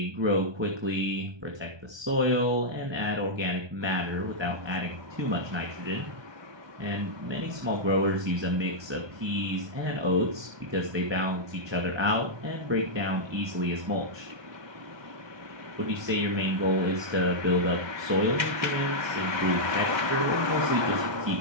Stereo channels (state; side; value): late; left; 1.2 ms